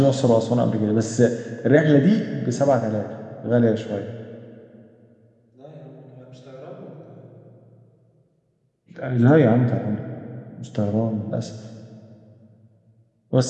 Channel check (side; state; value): both; identical; correlation 1.00